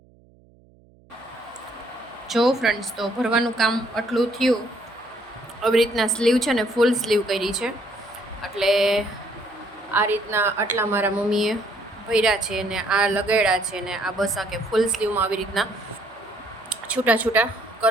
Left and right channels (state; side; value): noise; right; hum, 29 dB below the sound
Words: જો ફ્રેન્ડ્સ, તો ભરવાનું કામ આટલું થયું. આવી રીતના સ્લીવ છે ને ફૂલ સ્લીવ કરી છે, એટલે આ રીતના આટલા મારા મમ્મીએ ભર્યા છે ને આ લગાડ્યા છે ને આ બસ આ કે ફૂલ સ્લીવમાં આવી રીતના છૂટા છૂટા